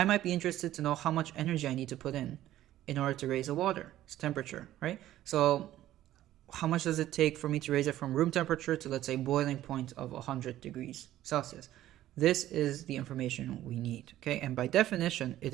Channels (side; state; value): left; quieter; 13.6 dB